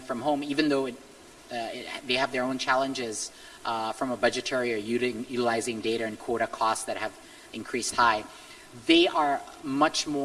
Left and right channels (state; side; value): identical; both; correlation 1.00